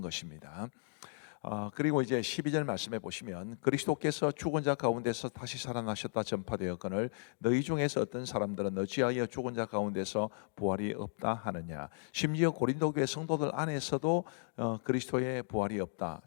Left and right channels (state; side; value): silent; right; digital silence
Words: 그리고 이제 12절 말씀에 보시면 그리스도께서 죽은 자 가운데서 다시 살아나셨다 전파되었거늘 너희 중에서 어떤 사람들은 어찌하여 죽은 자 가운데서 부활이 없다 하느냐. 심지어 고린도 교회 성도들 안에서도 그리스도의 부활이 없다,